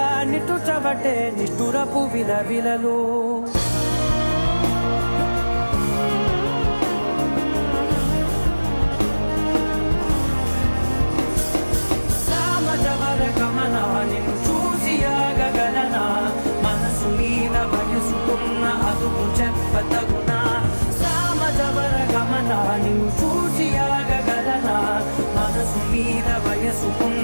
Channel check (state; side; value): inverted; both; correlation -1.00